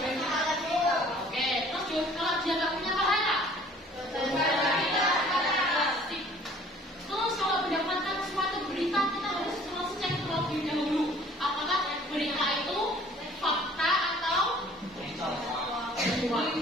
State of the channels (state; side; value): normal; both; correlation 0.53